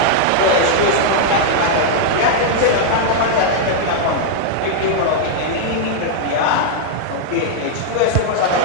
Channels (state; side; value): different; both; correlation -0.01